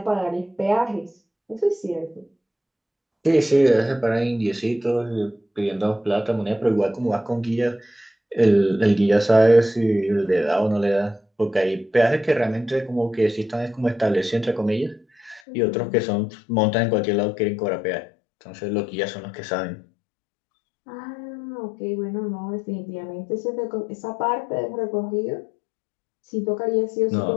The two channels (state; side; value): drops out; right; at 15.4 s